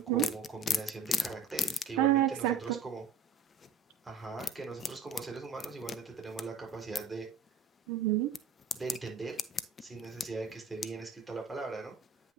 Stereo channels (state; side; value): quieter; left; 4.3 dB